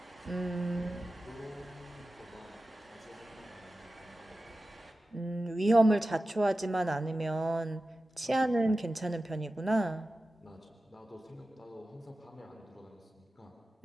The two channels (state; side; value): normal; both; correlation 0.94